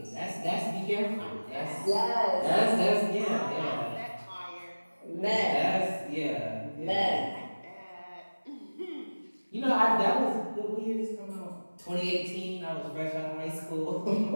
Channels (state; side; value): inverted; both; correlation -1.00